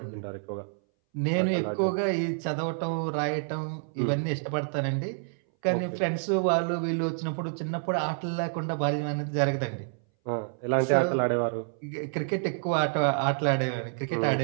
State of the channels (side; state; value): left; silent; 59 dB below the other